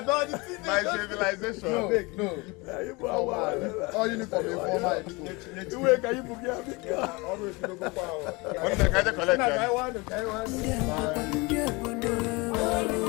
civilization. No. All uniform informal. Iwe ka yipu kia bika. Always no go power. One day kaje collect.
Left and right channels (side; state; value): right; quieter; 25.8 dB